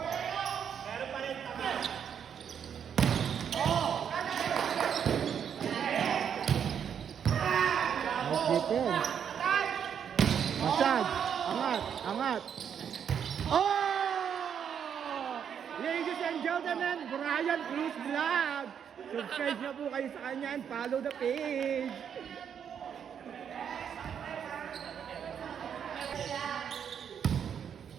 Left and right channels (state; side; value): quieter; left; 8.1 dB